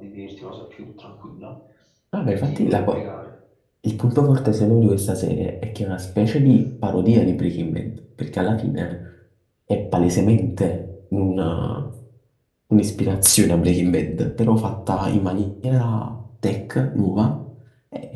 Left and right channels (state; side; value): identical; both; correlation 1.00